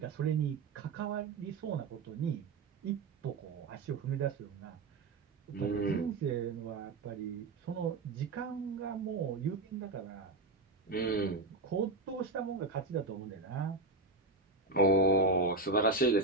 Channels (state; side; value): quieter; left; 3.4 dB